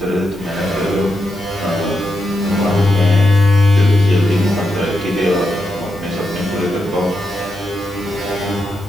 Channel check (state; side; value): normal; both; correlation 0.85